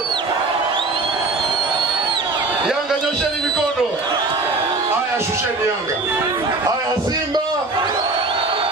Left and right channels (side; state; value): left; quieter; 3.4 dB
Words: Yanga nyosheni mikono. Haya shusheni Yanga. Haya Simba.